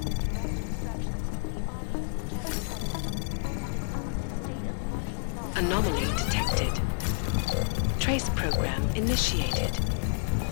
Anomaly detected. Trace program initiated.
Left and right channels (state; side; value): silent; right; 58 dB below the other